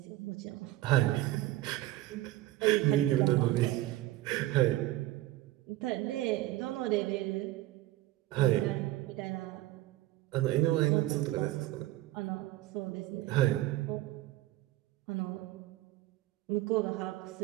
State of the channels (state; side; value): quieter; left; 16.3 dB